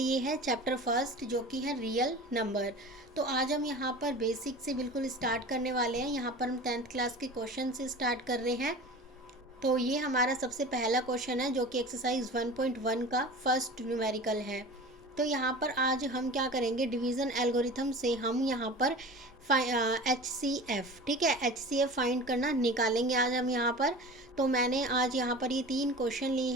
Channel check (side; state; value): both; normal; correlation 0.36